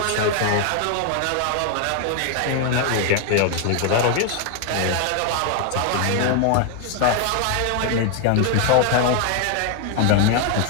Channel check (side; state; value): both; different; correlation 0.01